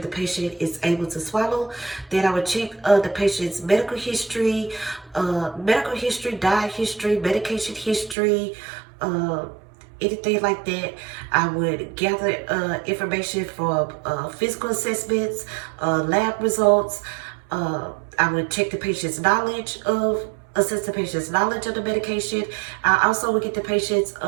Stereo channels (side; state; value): left; drops out; at 8.2 s